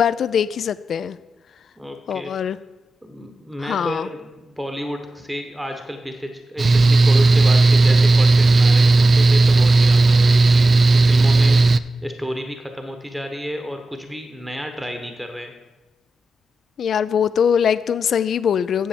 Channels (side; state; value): both; normal; correlation 0.93